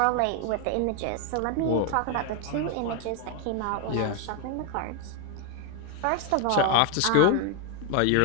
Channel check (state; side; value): different; both; correlation 0.01